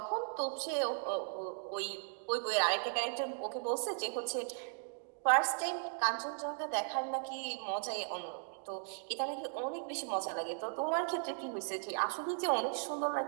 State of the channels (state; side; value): silent; left; digital silence